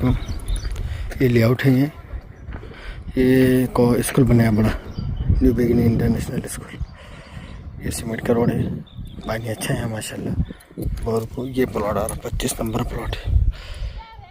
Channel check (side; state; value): both; identical; correlation 1.00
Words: ये लेआउट है। ये स्कूल बनाया बड़ा, न्यू बिगिनिंग इंटरनेशनल स्कूल। ये सीमेंट का रोड है, पानी अच्छा है माशाल्लाह। और ये प्लॉट आ रहा 25 नंबर प्लॉट है।